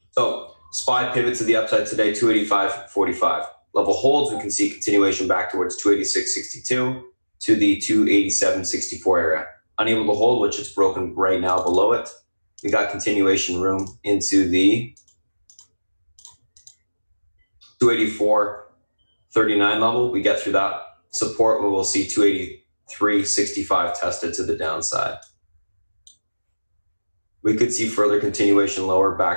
So SPY pivot to the upside today, 285.45. Level holds, we can see continuation back towards 286.62 to the 287.64 area. Unable to hold, which it's broken right now below it. We got continuation room into the 284.39 level. We get through that support where we'll see 283.65 tested to the downside. We could see further continuation lower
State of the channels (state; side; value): inverted; both; correlation -1.00